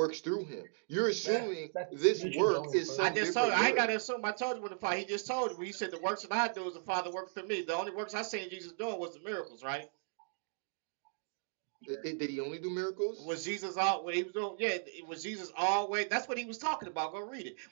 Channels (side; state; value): left; silent; digital silence